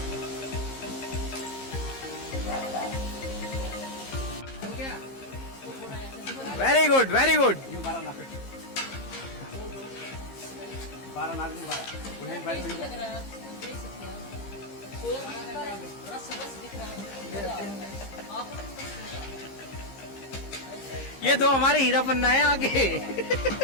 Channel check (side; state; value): right; late; 15 ms